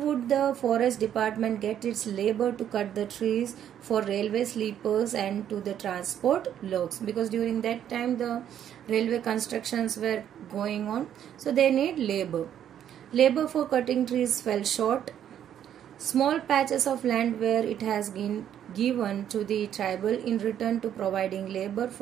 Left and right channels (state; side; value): quieter; left; 10.0 dB